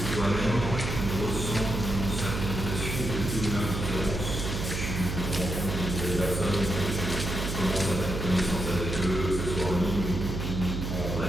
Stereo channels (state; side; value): noise; right; hum, 3 dB below the sound